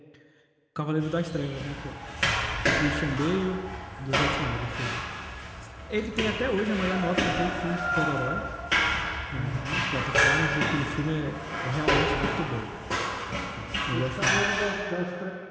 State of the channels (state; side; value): identical; both; correlation 1.00